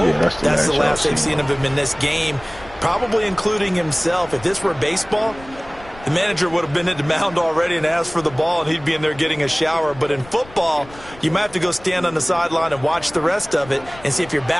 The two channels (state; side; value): noise; left; rumble, 20 dB below the sound